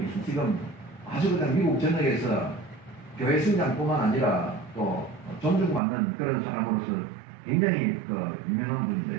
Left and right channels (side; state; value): left; drops out; at 5.8 s